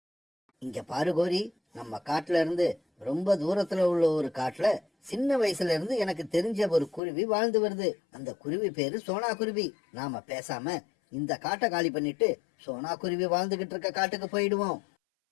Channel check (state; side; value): drops out; right; at 7.0 s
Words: இங்க பாரு கோரி, நம்ம காட்டுல இருந்து ரொம்ப தூரத்துல உள்ள ஒரு காட்டுல சின்ன வயசுல இருந்து எனக்கு தெரிஞ்ச ஒரு குருவி வாழ்ந்து வருது. அந்த குருவி பேரு சோனா குருவி. நாம பேசாம இந்த காட்டை காலி பண்ணிட்டு சோனா குருவி வாழ்ந்துகிட்டு இருக்க காட்டுக்கு போயிடுவோம்.